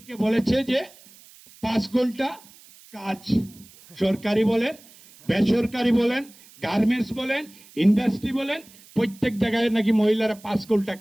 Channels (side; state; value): right; noise; hiss, 24 dB below the sound